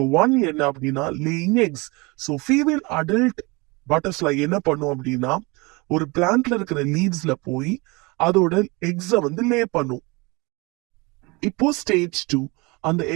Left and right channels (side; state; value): left; quieter; 26.1 dB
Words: 1 என்ன அப்படின்னா laying X. So female adult butterfly என்ன பண்ணும் அப்படின்னா ஒரு பிளான்ட்ல இருக்கிற லீவ்ஸ்ல போய் அதோட எக்ஸ லே பண்ணும். இப்போ ஸ்டேஜ் 2, அந்த